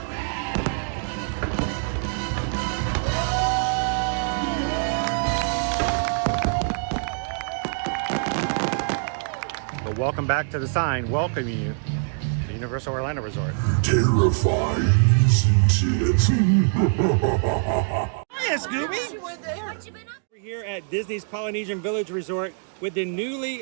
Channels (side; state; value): left; silent; 62 dB below the other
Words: But welcome back to the sign welcoming you to Universal Orlando Resort. Terrifying, isn't it? Hiya, Scooby! We're here at Disney's Polynesian Village Resort with the newly